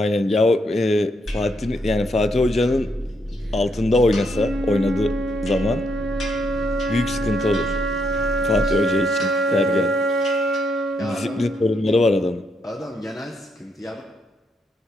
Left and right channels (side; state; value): both; normal; correlation 0.76